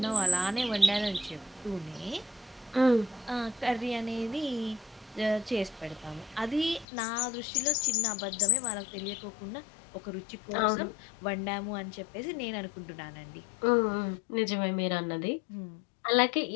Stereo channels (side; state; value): right; drops out; at 6.9 s